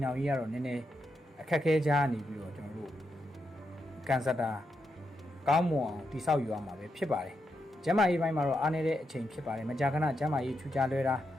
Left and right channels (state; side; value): normal; both; correlation 0.83